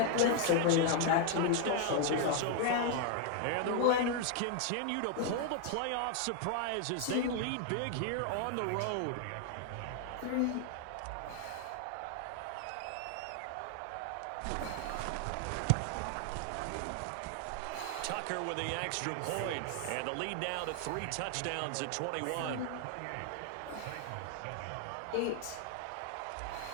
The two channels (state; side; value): different; both; correlation 0.00